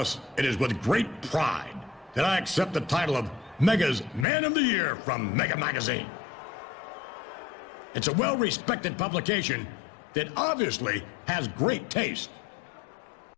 it is with great pride that I accept the title of Mega's Man of the Year from Mega Magazine. It's a well-respected publication that obviously has great taste.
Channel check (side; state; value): right; drops out; at 4.2 s